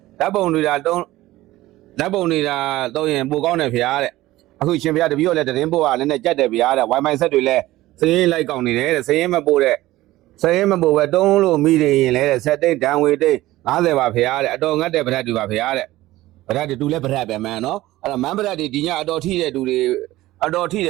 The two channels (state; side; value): quieter; left; 16.9 dB